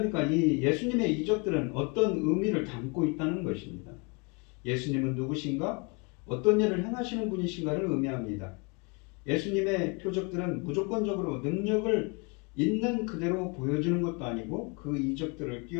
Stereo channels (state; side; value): quieter; right; 32.0 dB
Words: 이 예수님의 이적들은 어떤 의미를 담고 있다는 것입니다. 예수님은 누구신가? 어떤 일을 행하시는 분이신가를 의미합니다. 예수님의 표적들은 무조건적으로 능력을 있는 그대로 보여주는 것도 아니고 그 이적들을